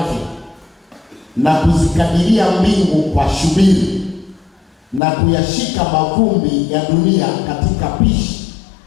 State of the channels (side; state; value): right; drops out; at 5.0 s